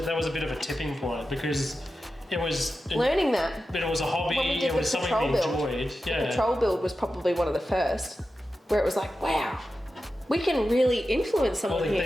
a bit of a tipping point, because it was learning that. But it was a hobby, it was something we enjoyed. The patrol build was probably one of the first, where it was like, wow, we can really influence someone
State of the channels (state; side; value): normal; both; correlation 0.92